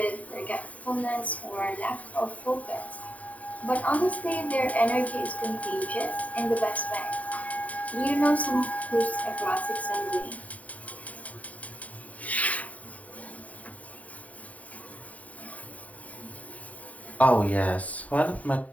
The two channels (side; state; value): right; late; 0.070 ms